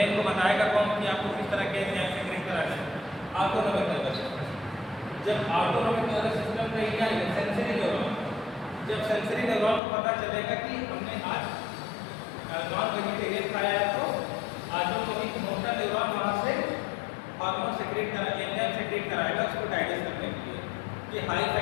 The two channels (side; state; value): right; drops out; at 9.8 s